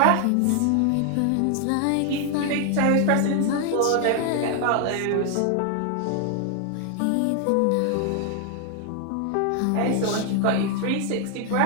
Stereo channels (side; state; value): both; different; correlation 0.00